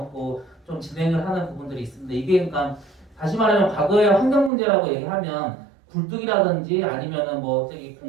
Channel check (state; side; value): drops out; left; at 4.5 s